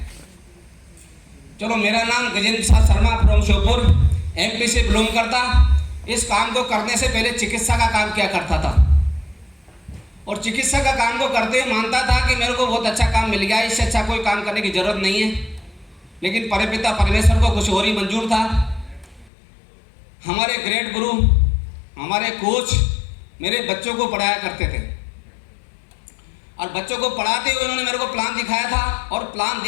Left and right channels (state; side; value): drops out; right; at 19.3 s